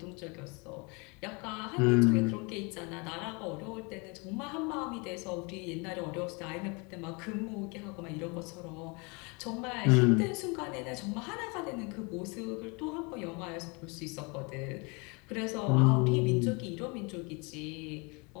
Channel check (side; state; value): right; quieter; 30.2 dB